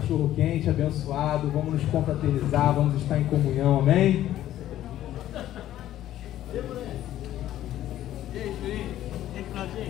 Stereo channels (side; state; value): right; quieter; 12.9 dB